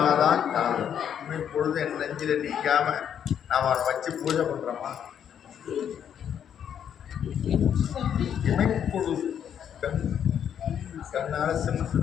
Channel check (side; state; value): right; quieter; 8.9 dB